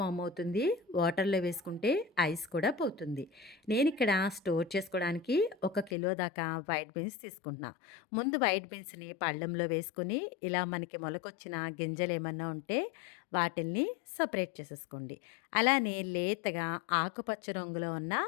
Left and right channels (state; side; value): drops out; right; at 6.0 s